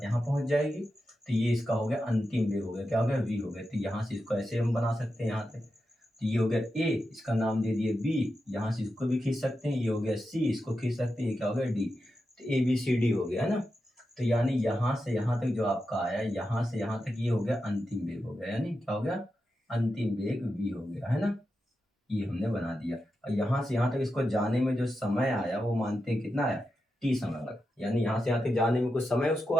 यहाँ पहुंच जाएगी। तो ये इसका हो गया अंतिम वेग, हो गया क्या हो गया, v हो गया। तो यहाँ से इसको ऐसे हम बना सकते हैं, यहाँ तक। तो ये हो गया a, इसका नाम दे दिए b, यहाँ से इसको भी खींच सकते हैं। ये हो गया c, इसको खींच सकते हैं। ये क्या हो गया d। तो ए बी सी डी हो गया, है ना। तो यानी यहाँ से यहाँ तक जो आपका आया, यहाँ से यहाँ तक ये हो गया अंतिम वेग हो गया। यानी क्या हो गया, अंतिम वेग v हो गया, है ना। ये हमने बना दिया। और यहाँ से यहाँ तक इसको जाने में जो समय आया वो मानते हैं कितना आया, t समय लगा। यानी यहाँ से यहाँ तक जाने में कुछ समय उसको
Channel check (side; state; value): both; normal; correlation 0.89